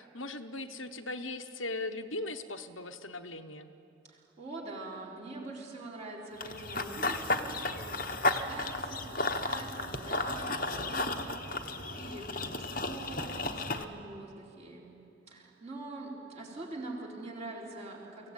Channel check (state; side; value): normal; both; correlation -0.17